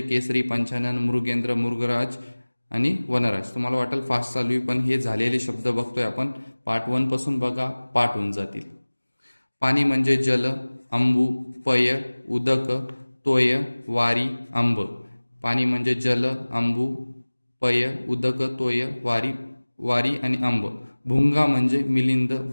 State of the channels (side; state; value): both; inverted; correlation -1.00